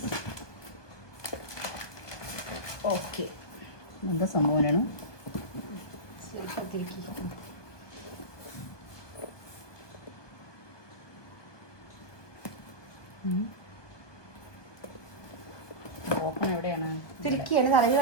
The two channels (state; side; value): late; right; 1.2 ms